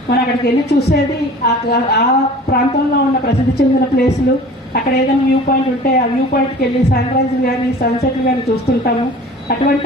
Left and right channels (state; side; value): normal; both; correlation 0.43